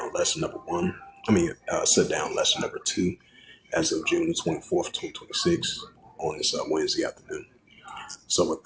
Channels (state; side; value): identical; both; correlation 1.00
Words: lesson number one. Sit down lesson number two as of June the 24th, 2026, on this Wednesday afternoon. So, with